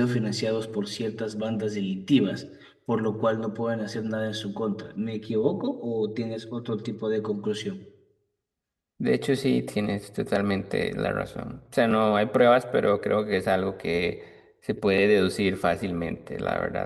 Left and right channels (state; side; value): identical; both; correlation 1.00